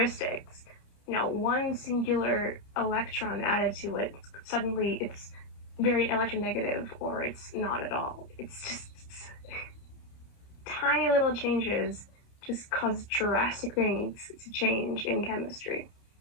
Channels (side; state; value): right; late; 30 ms